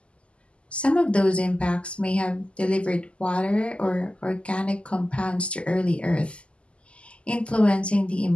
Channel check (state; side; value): late; right; 0.055 ms